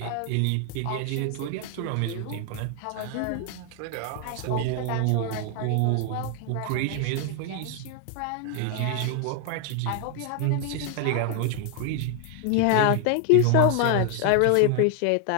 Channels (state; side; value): different; both; correlation 0.00